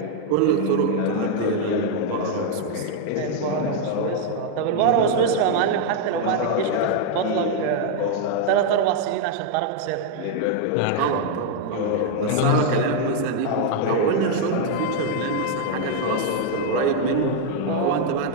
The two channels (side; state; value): both; different; correlation 0.00